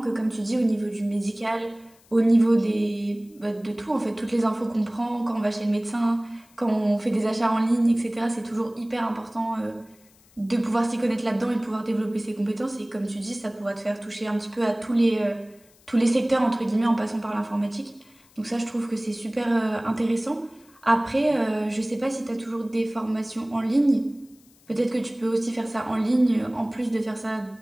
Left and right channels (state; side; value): noise; left; hiss, 29 dB below the sound